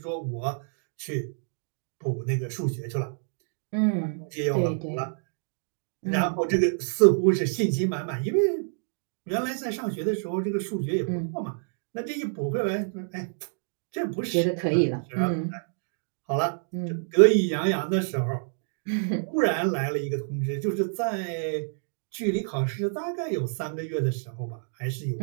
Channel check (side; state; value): left; silent; digital silence